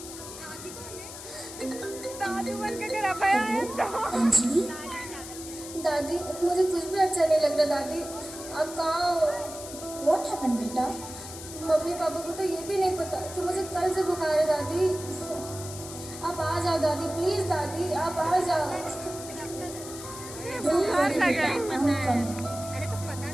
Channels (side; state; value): left; noise; hiss, 12 dB below the sound